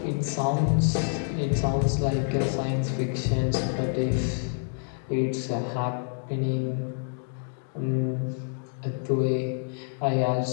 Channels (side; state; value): right; silent; 60 dB below the other